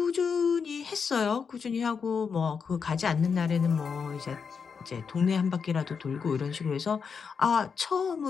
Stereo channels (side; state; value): right; quieter; 6.0 dB